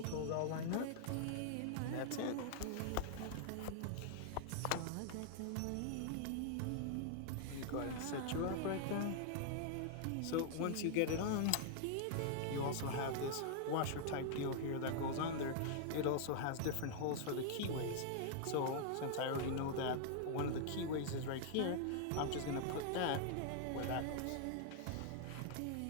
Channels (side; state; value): both; different; correlation -0.01